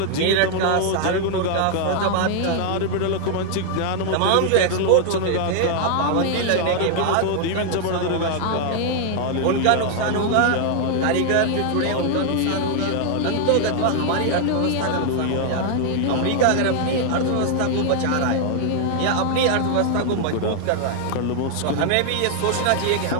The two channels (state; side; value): different; both; correlation 0.00